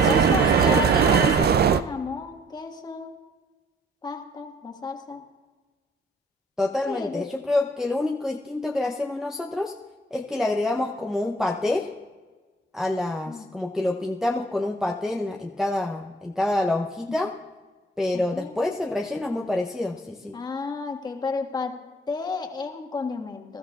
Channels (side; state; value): both; normal; correlation 0.57